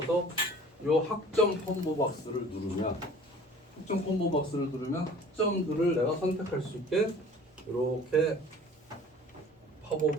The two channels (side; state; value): both; normal; correlation 0.47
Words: 이 학점 콤보 박스를 누르면 학점들을 내가 선택할 수 있게 이렇게